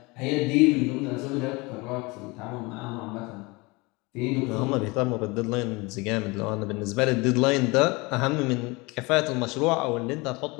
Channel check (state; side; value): quieter; right; 25.2 dB